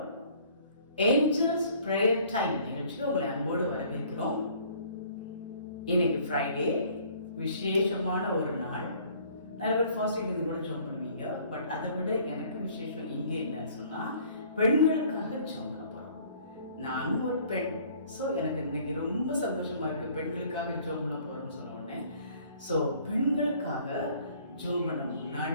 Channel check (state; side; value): inverted; both; correlation -0.56